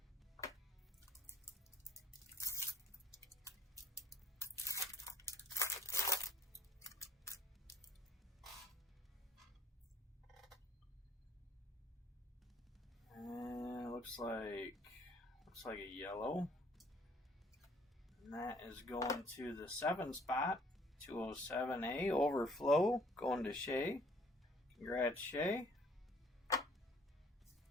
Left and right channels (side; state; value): both; normal; correlation 0.61